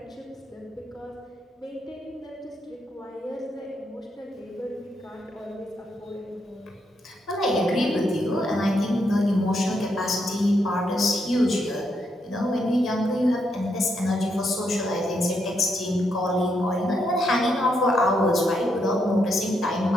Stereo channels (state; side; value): normal; both; correlation 0.79